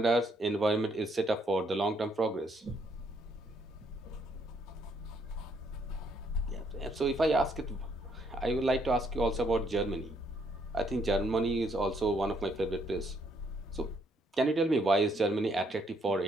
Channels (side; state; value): both; normal; correlation 0.71